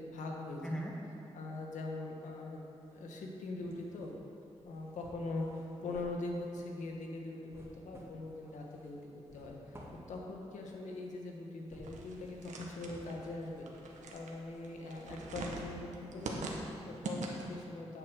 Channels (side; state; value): both; normal; correlation 0.70